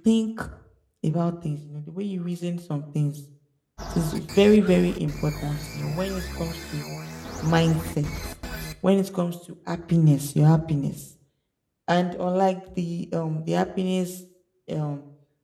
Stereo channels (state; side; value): identical; both; correlation 1.00